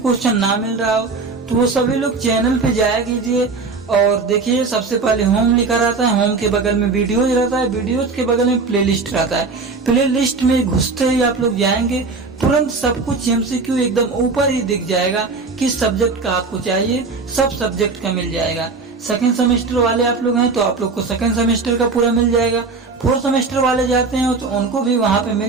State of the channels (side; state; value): left; quieter; 4.2 dB